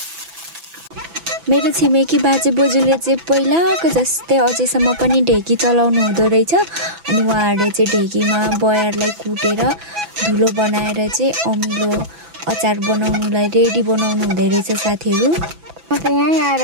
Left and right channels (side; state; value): left; late; 6.0 ms